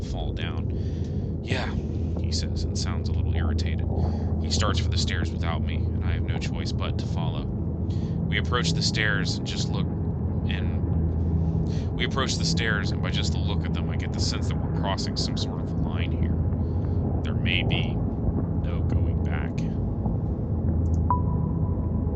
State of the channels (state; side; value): identical; both; correlation 1.00